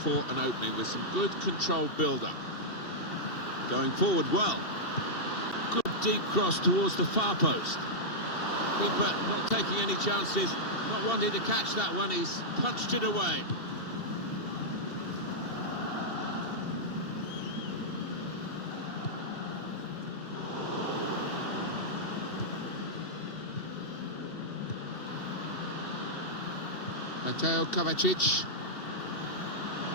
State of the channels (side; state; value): right; late; 2.7 ms